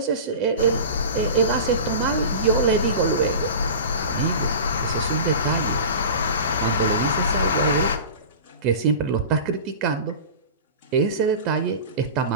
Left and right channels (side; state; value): both; inverted; correlation -0.33